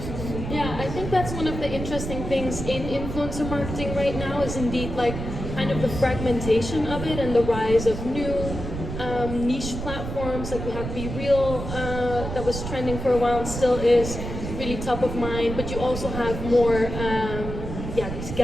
Yeah, I think that's one of the interesting things in influencer marketing right now is indeed like kind of the fragmentation of it and the rise of new niche platforms. Like we have Be Real that was trending for a while and still is really top of mind, but you also have more these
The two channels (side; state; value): right; noise; rumble, 6 dB below the sound